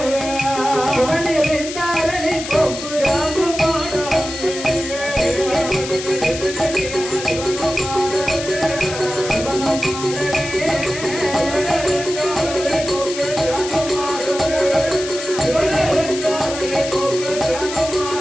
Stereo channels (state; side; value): noise; left; hiss, 9 dB below the sound